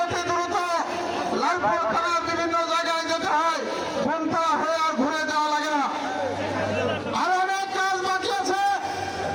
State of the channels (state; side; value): identical; both; correlation 1.00